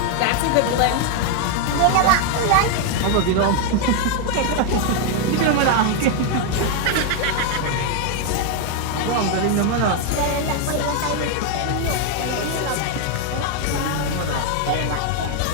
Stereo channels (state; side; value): different; both; correlation 0.01